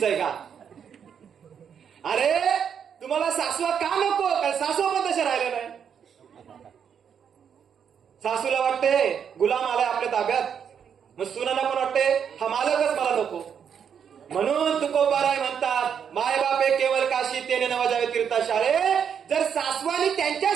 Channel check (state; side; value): quieter; left; 7.7 dB